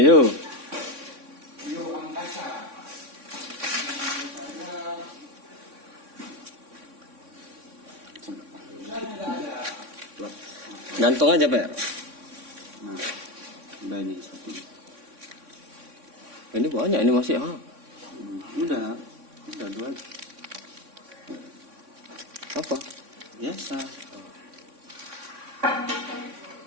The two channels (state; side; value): late; left; 3.6 ms